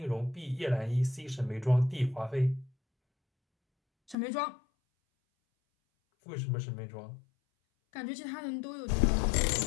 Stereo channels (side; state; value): right; drops out; at 4.2 s